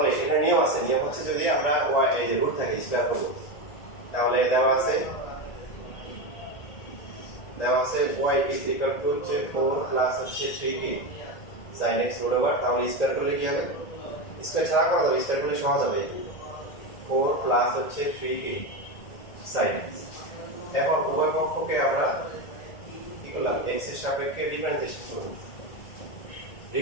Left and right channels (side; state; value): right; late; 1.8 ms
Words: এখানে নিয়ম আছে, নিয়ম হচ্ছে যদি আমরা y এই যে রুট থাকে স্কয়ার করব, তাহলে দেওয়া আছে y is equal to 4 plus হচ্ছে 3k sin x root over, তাহলে স্কয়ার করলে কি হবে? স্কয়ার ছাড়া করা যাবে, স্কয়ার করলে সহজ হবে। 4 প্লাস হচ্ছে 3k sin x। এখন উভয় পক্ষকে আমরা কি করলাম? x এর সাপেক্ষে ডিফারেন্সিয়েশন করব।